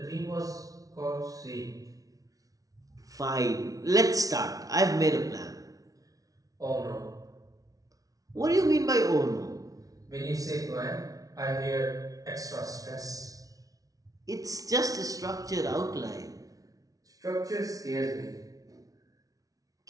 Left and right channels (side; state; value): left; late; 0.18 ms